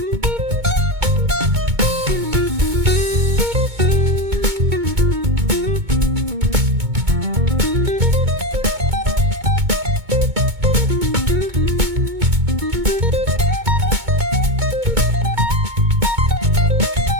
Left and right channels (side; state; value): left; late; 2.2 ms